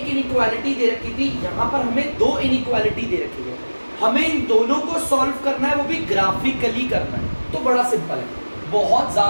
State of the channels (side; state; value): both; inverted; correlation -1.00